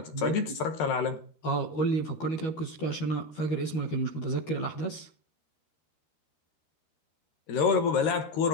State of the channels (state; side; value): late; right; 13 ms